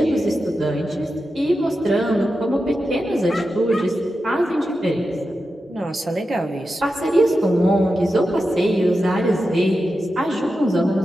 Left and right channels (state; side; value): normal; both; correlation 0.90